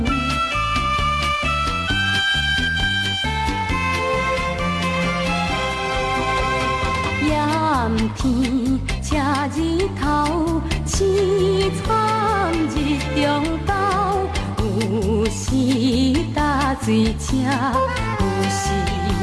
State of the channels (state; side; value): identical; both; correlation 1.00